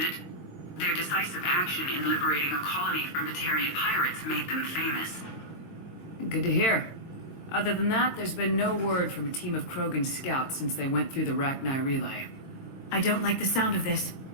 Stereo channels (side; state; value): right; late; 22 ms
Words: Their decisive action in liberating a colony from Batarian pirates made them famous. Good to hear. Other than that, there's been no word from a team of Krogan scouts since they went through the Rachni relay. I don't like the sound of this.